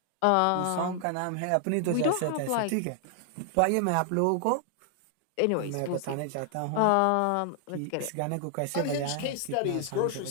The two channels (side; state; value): both; different; correlation 0.00